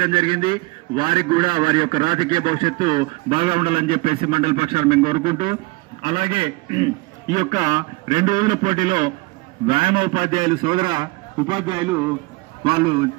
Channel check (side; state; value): left; quieter; 23.8 dB